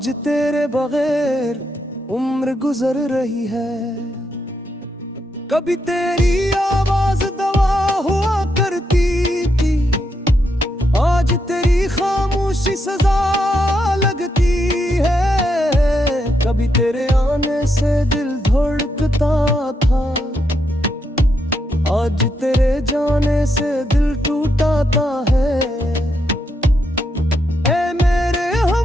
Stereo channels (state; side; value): normal; both; correlation 0.80